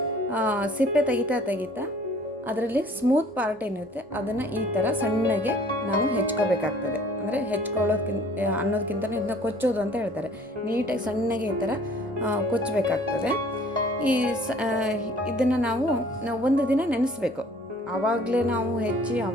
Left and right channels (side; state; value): both; normal; correlation 0.53